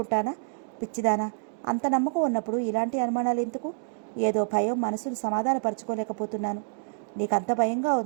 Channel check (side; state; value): left; silent; digital silence